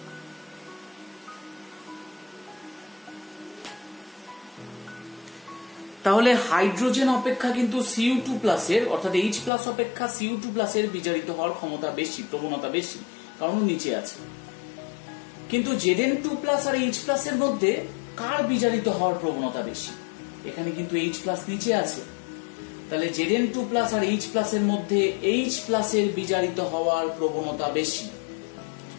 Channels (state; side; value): drops out; right; at 9.5 s